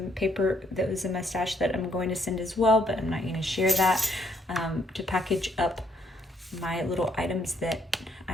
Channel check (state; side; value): normal; both; correlation 0.69